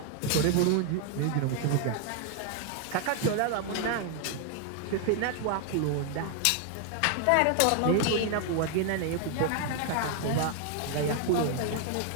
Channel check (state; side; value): different; both; correlation 0.00